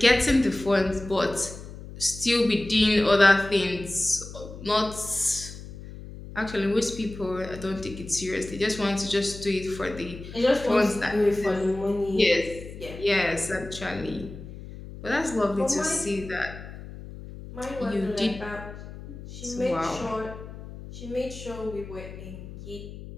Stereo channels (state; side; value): noise; left; hum, 13 dB below the sound